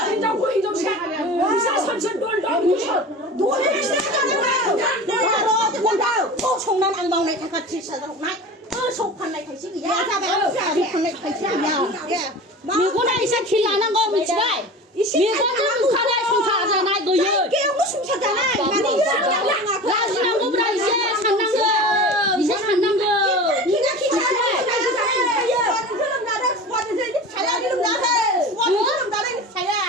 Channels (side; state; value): both; normal; correlation 0.34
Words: 총난 안 먹네 같이 살도록 나 속판 날 다시 야 잡아 속판 날 다시 야 미고나 이제 길 안 한 거 미치가 미고는 가다 송사하잖아 너요 깨우고 숨차잖아 라지난 거보다 이제 산난 거 이제 산난 거 기가 기차야 그럼 나랑 수고하는 데 잘하는 나해 수고하는 나랑 잘해